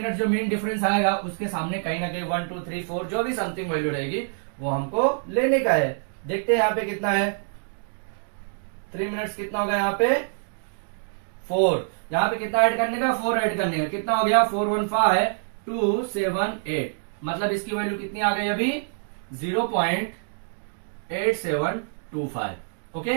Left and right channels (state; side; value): silent; left; digital silence